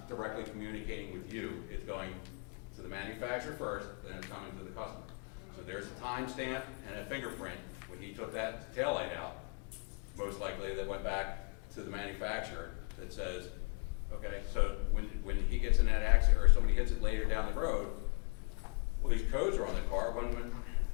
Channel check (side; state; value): right; quieter; 32.2 dB